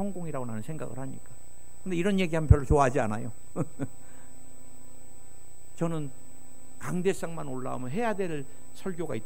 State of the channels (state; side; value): identical; both; correlation 1.00